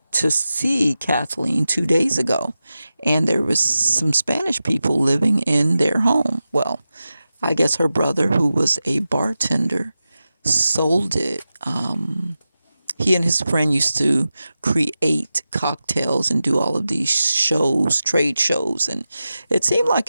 to see Kathleen 2 days ago, and there was some Spanish people living in their home. Well, I guess her brother, who was a bartender, sold it. He and his friend used to create cocktails and do all of these shows, trade shows, and it seemed like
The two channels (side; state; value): both; inverted; correlation -0.93